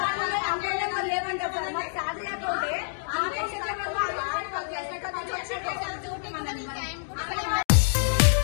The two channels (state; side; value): silent; right; digital silence